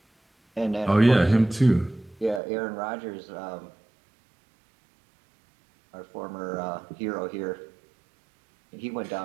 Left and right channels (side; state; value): left; drops out; at 2.4 s